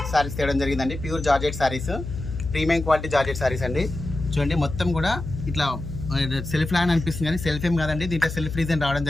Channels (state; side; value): noise; left; hum, 7 dB below the sound